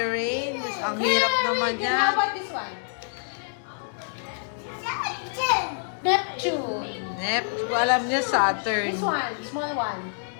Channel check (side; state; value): right; silent; digital silence